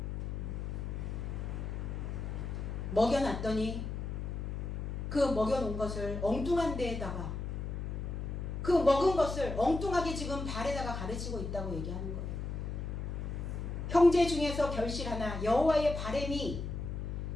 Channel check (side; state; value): left; noise; hum, 4 dB below the sound